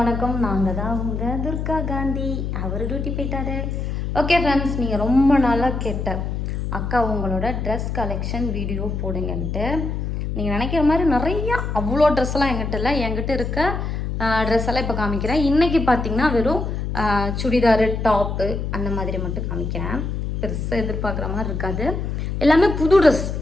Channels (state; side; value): noise; left; hum, 3 dB below the sound